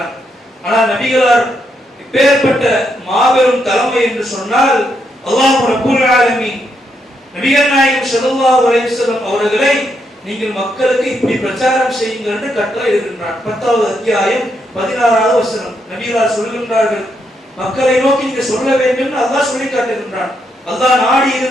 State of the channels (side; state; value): both; normal; correlation 0.79